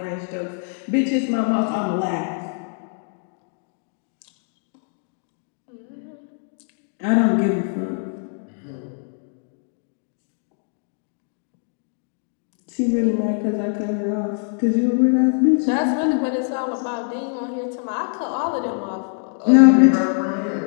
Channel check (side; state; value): right; silent; 58 dB below the other